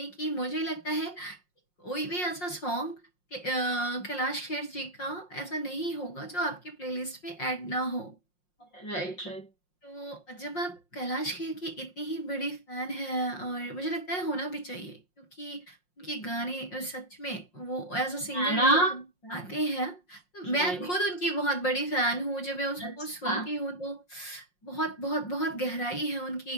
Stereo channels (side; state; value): right; late; 5.6 ms